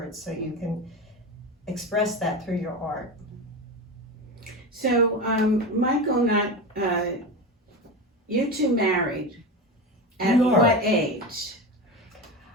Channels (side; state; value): both; normal; correlation 0.23